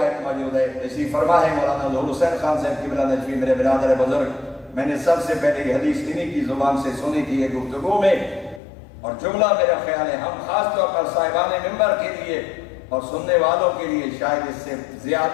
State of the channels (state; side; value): drops out; right; at 8.6 s